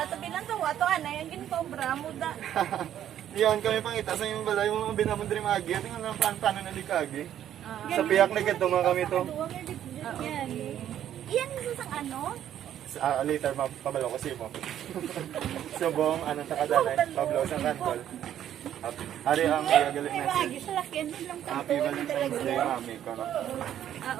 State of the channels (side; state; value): left; quieter; 10.8 dB